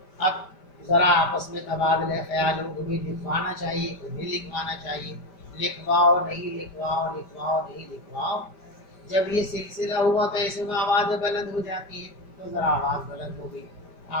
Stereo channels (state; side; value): late; right; 5.1 ms